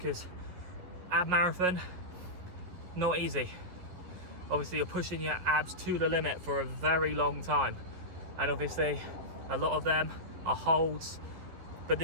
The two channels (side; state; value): left; late; 11 ms